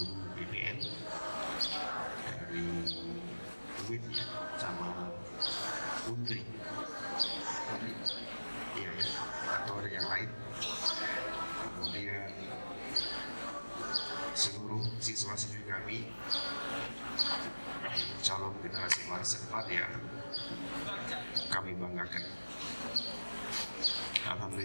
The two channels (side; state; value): both; inverted; correlation -1.00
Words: BPN dari UIN sama Undri, iya ya, atau ada yang lain. Kemudian seluruh siswa-siswi kami, calon generasi masa depan yang kami banggakan.